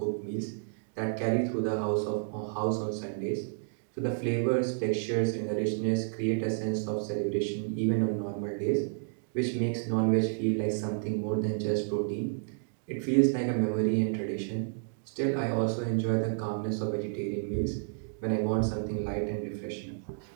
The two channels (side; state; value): left; silent; digital silence